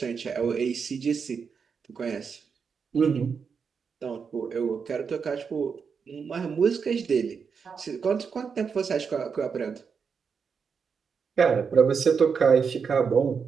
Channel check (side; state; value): left; quieter; 6.0 dB